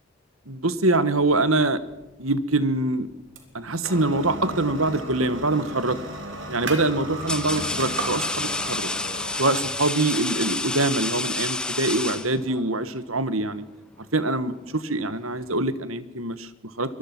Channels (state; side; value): normal; both; correlation 0.05